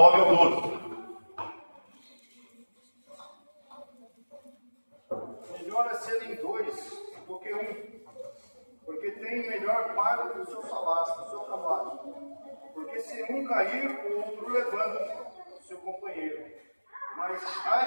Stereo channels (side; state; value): both; inverted; correlation -1.00